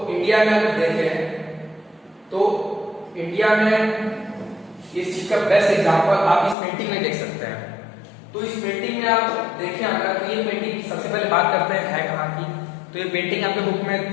इंडिया में अगर देखें तो इंडिया में इस चीज का बेस्ट एग्जाम्पल आप इस पेंटिंग में देख सकते हैं। तो इस पेंटिंग में आप देखें अगर, तो ये पेंटिंग सबसे पहले बात करते हैं है कहाँ की। तो ये पेंटिंग आपके बुक में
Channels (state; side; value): drops out; right; at 6.6 s